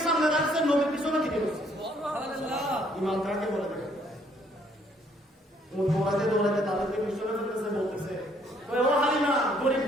সামনে রাখছে, নবী পিছনে দিকে বসে। সুবহানাল্লাহ। ইমাম কাকে বলে দেখে ও দৌড়াতে দৌড়াতে তাদেরকে পিছনে ফেলতেছে, বলতেছে ওই ও হালিমা গরিব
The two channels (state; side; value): normal; both; correlation 0.65